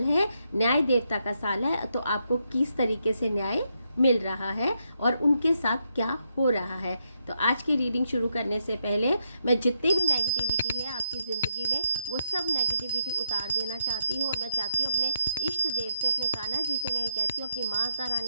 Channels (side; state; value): both; inverted; correlation -0.80